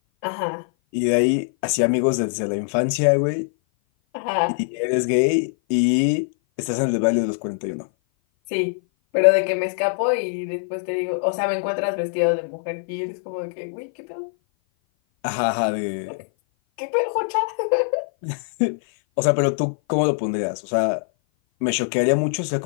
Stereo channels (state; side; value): silent; right; 56 dB below the other